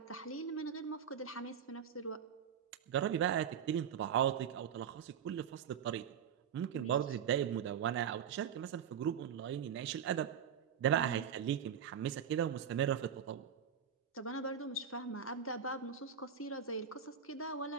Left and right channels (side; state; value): left; quieter; 8.1 dB